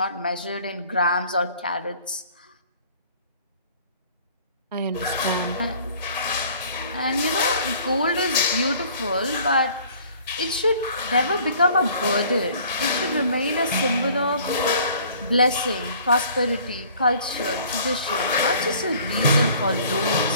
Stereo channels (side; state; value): both; inverted; correlation -0.54